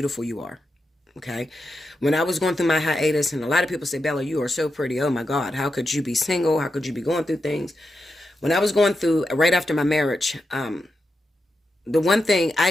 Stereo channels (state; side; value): normal; both; correlation 0.87